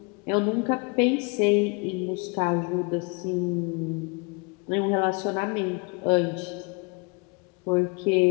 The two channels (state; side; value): quieter; right; 32.2 dB